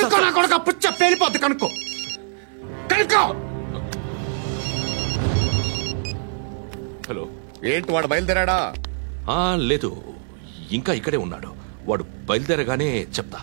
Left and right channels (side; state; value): left; silent; 63 dB below the other